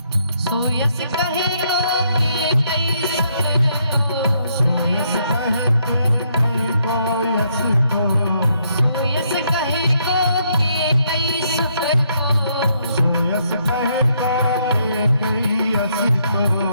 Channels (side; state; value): both; inverted; correlation -0.73